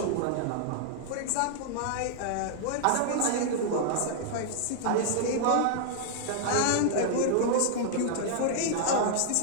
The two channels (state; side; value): different; both; correlation -0.01